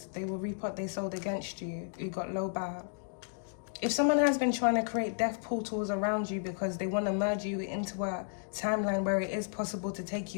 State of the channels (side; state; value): right; silent; digital silence